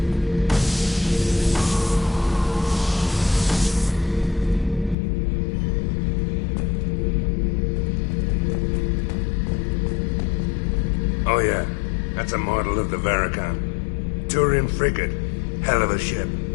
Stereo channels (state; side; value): drops out; right; at 5.0 s